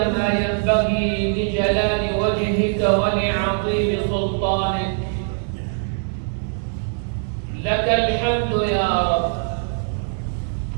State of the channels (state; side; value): silent; left; digital silence